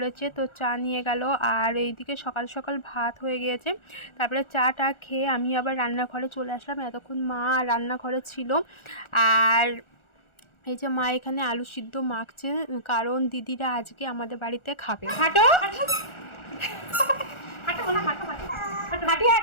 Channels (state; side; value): late; right; 1.4 ms